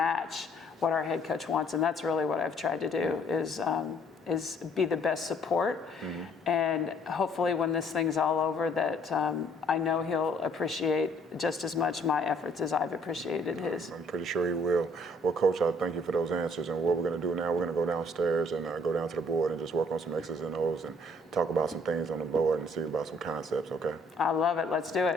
what our head coach wants. And that's really what I've tried to do, is be the best support. And hopefully when this thing's all over, that I know he'll appreciate just as much my efforts as I've appreciated his. I'm pretty sure he will. Well, Coach, I thank you for those answers. And what we're going to do now, we're going to go downstairs and go down to the board and just work on some X's and O's and talk about some things on the board and see about some concepts, okay? I love it. Let's do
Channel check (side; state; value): both; normal; correlation 0.62